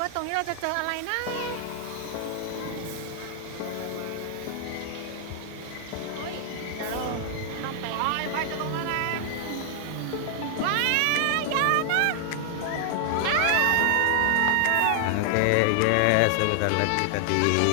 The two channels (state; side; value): different; both; correlation -0.01